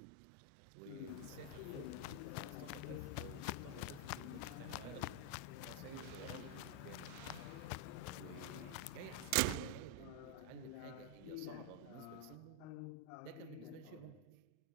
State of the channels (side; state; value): both; different; correlation 0.00